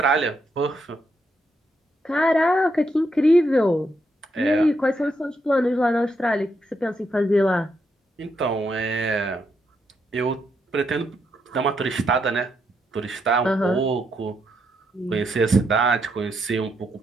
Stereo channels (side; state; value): both; normal; correlation 0.79